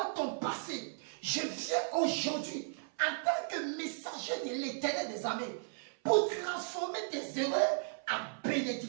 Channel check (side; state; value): left; silent; 54 dB below the other